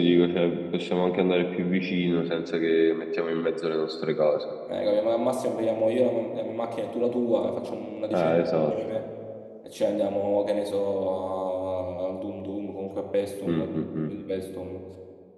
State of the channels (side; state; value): both; identical; correlation 1.00